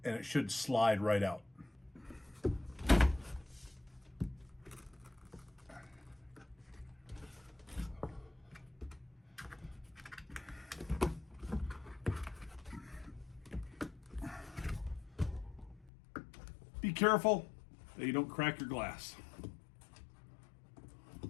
and it should slide right out. Be careful that you don't crack your glass.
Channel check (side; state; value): right; drops out; at 15.9 s